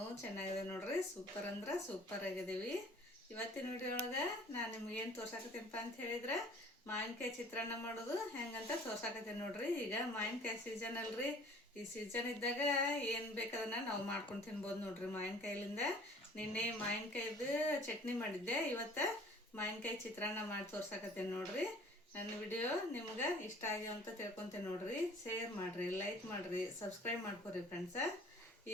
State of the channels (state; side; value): normal; both; correlation 0.51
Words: ಚೆನ್ನಾಗಿದೆ ನೋಡ್ರಿ, ಸೂಪರ್ ಅಂದ್ರೆ ಸೂಪರ್ ಆಗಿದ್ದೀವಿ. ಇವತ್ತಿನ ವಿಡಿಯೋ ಒಳಗೆ ನಾನು ನಿಮ್ಗೇನು ತೋರ್ಸಾಕತ್ತೀನಪ್ಪ ಅಂತ ಹೇಳಿದ್ರೆ ಮಾವಿನಕಾಯಿ ಚಿತ್ರಾನ್ನ ಮಾಡೋದು ಹೆಂಗಂತ ತೋರ್ಸಾಕತ್ತೀನಿ ನೋಡ್ರಿ. ಈಗ ಮಾವಿನಕಾಯಿ ಸೀಸನ್ ಅಲ್ರಿ, ಈ ಸೀಸನ್ ಇದ್ದಾಗ ಏನು ಬೇಕಾದನ್ನ ನಾವು ಮಾಡ್ಕೊಂಡು ತಿನ್ಬೋದು ನೋಡ್ರಿ ಮಾವಿನಕಾಯಿಲಿಂದ. ನಿನ್ನೆ ಮಾವಿನಕಾಯಿದು ಚಟ್ನಿ ಮಾಡಿದ್ದೆ, ಇವತ್ತು ಮಾವಿನಕಾಯಿ ಚಿತ್ರಾನ್ನ ಮಾಡಿ ತೋರ್ಸಾಕತ್ತೀನಿ ನೋಡ್ರಿ. ನನ್ನ ವಿಡಿಯೋ ನಿಮ್ಗೆ ಇಷ್ಟ ಆಗ್ಯಾವ ಅಂತ ತಿಳ್ಕೊತೇನೆ ನೋಡ್ರಿ. ಶೇರ್ ಮಾಡಿರಿ, ಲೈಕ್ ಮಾಡಿರಿ, ಸಬ್ಸ್ಕ್ರೈಬ್ ಮಾಡ್ಕೊರಿ ಫ್ರೆಂಡ್ಸ.